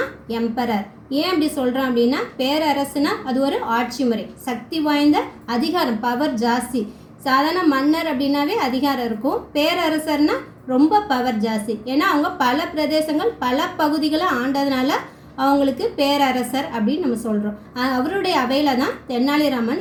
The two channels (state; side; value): identical; both; correlation 1.00